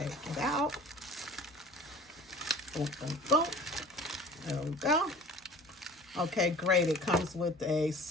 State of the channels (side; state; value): both; normal; correlation 0.45